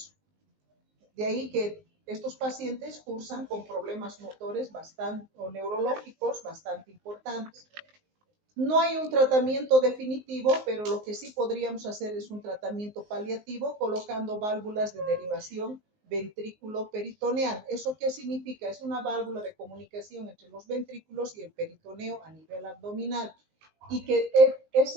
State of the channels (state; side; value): late; left; 19 ms